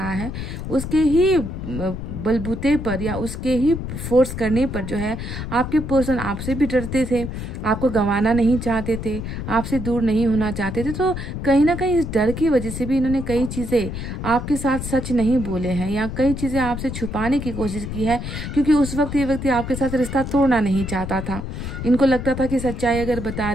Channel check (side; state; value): left; noise; rumble, 6 dB below the sound